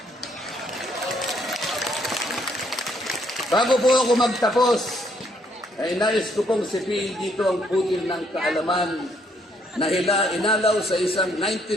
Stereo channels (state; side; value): normal; both; correlation 0.70